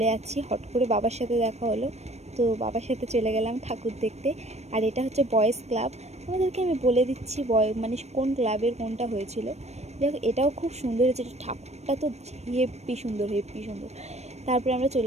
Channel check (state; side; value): late; left; 0.32 ms